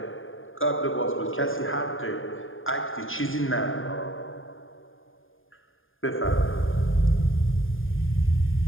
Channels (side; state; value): right; late; 0.59 ms